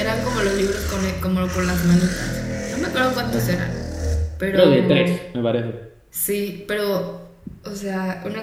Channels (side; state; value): both; identical; correlation 1.00